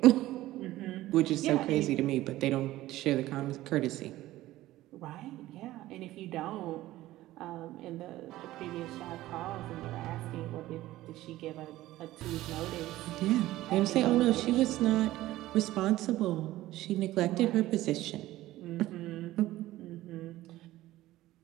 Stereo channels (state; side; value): quieter; left; 16.0 dB